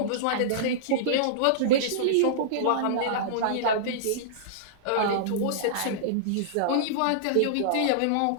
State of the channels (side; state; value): both; different; correlation -0.03